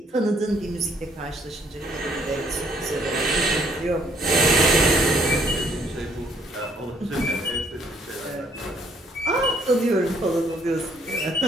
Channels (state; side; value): normal; both; correlation 0.66